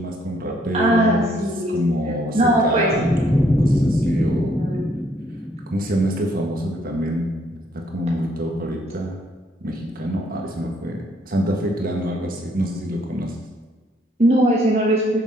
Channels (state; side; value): normal; both; correlation 0.67